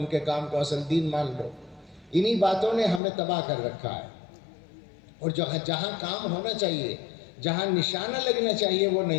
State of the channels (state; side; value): drops out; right; at 3.0 s